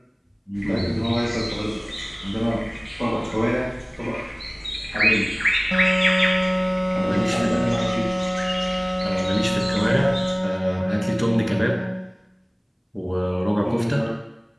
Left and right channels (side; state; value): both; identical; correlation 1.00